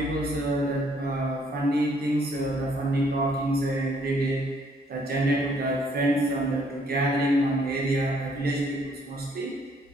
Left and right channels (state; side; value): normal; both; correlation 0.66